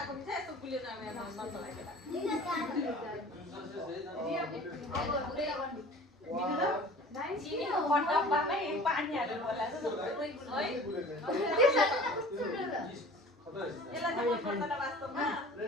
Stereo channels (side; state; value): both; normal; correlation 0.44